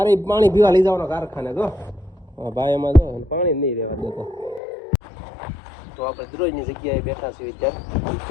પાણી પીવા લઈ જવાનો કારખાને. જો ભાઈ એમાં જો પાણી નહીં રહેવા દેતો. તો આપણે દરરોજની જગ્યાએ બેઠા છીએ અત્યારે.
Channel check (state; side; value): drops out; right; at 4.6 s